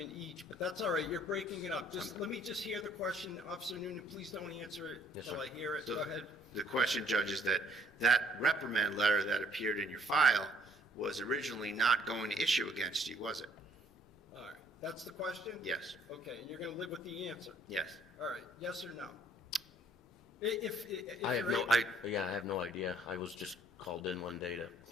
each, but that's all right, you're breaking it up. Let me just hear the question, Officer Nunan, please don't answer it Yes, until I sir. hear it, So go ahead. The question, Judge, is that reprimand letter that appeared in your file was originally not going to issue against you, was it? All right, that's the question? Yes. Okay, and you're gonna live with the answer? Yes. All right, yes or no? If I have you're no, able- I have no idea. I was just called in one day to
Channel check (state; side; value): normal; both; correlation 0.62